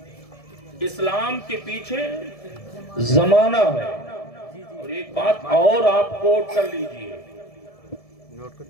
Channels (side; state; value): right; late; 1.7 ms